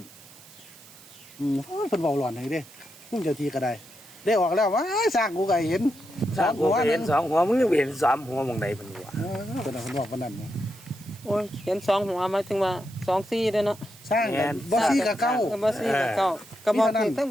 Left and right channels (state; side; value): noise; right; hiss, 21 dB below the sound